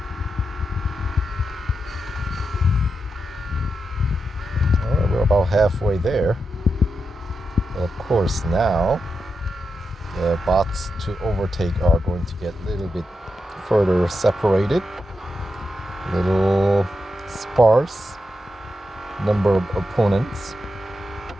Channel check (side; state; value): both; normal; correlation 0.87